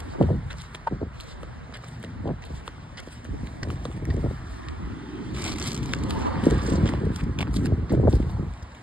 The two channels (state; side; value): normal; both; correlation 0.81